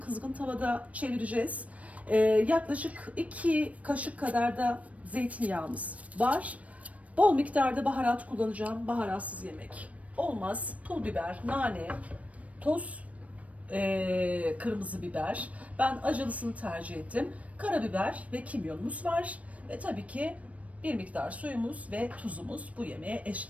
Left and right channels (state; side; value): late; left; 0.066 ms